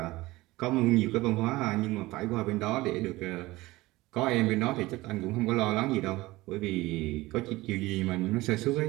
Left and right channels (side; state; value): left; quieter; 19.5 dB